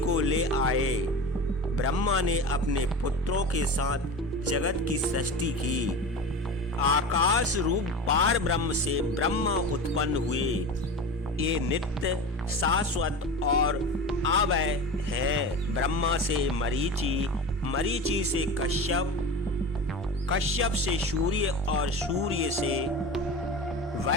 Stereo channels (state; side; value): normal; both; correlation 0.30